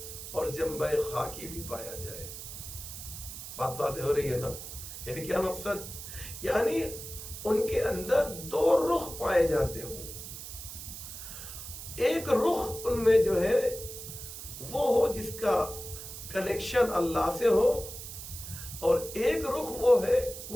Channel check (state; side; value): noise; right; hiss, 10 dB below the sound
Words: اور جنبہ خاکی بھی پایا جائے. بات واضح ہو رہی ہے نا؟ یعنی کیا مقصد؟ یعنی ان کے اندر دو رخ پائے جاتے ہوں. ایک رخ ان میں جو ہے وہ ہو جس کا کنیکشن اللہ سے ہو، اور ایک رخ